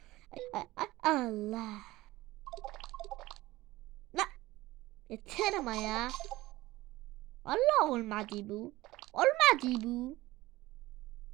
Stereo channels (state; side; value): quieter; left; 18.3 dB